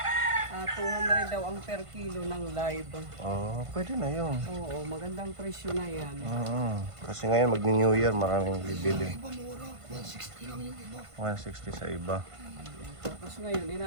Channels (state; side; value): late; left; 1.5 ms